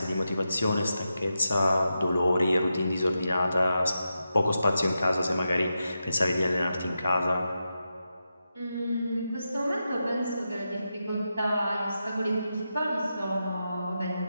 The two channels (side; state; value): both; inverted; correlation -0.88